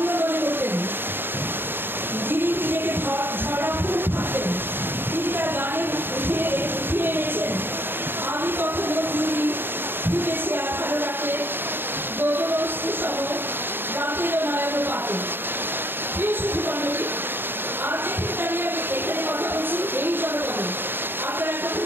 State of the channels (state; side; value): late; left; 0.10 ms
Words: মনে করতেন, যিনি নিজেকে ঝরা ফুল থাকতেন, তিনি তার গানে উঠিয়ে এনেছেন আমি কখনো চুরি ফুটেছি আর ভালো রাখলে গগনস্থি সহ রাতের নয়ন পাতে। প্রিয় সুধী মণ্ডলী, আজ যেখানে দাঁড়িয়ে আমি এখানে কথা বলছি এই জনপদে, আপনারা কথা